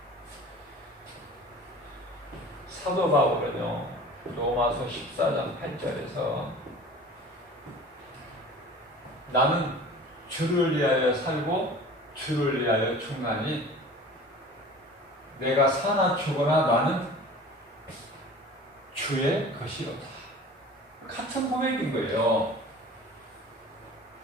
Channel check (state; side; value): normal; both; correlation 0.42